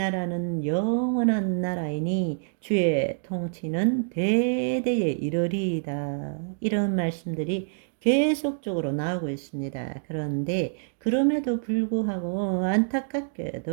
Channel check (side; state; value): left; silent; digital silence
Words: 영원한 나라이니 주의 통치는 대대에 이르리이다. 이런 말씀들이 계속적으로 나오고 있습니다. 그런데 그럼에도 불구하고